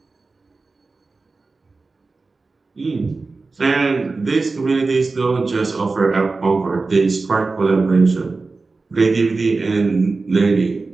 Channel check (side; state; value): left; quieter; 3.8 dB